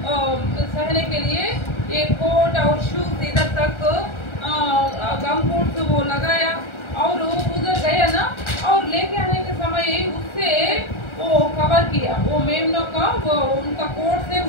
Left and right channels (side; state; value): right; late; 1.3 ms